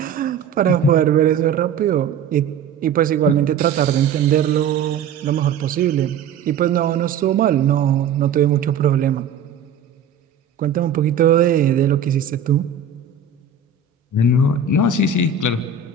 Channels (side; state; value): left; quieter; 6.3 dB